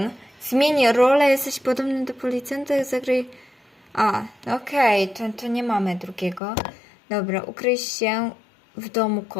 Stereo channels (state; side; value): drops out; right; at 6.4 s